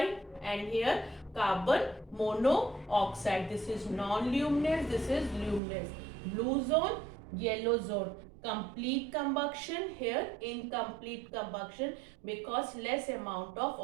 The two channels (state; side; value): drops out; left; at 5.6 s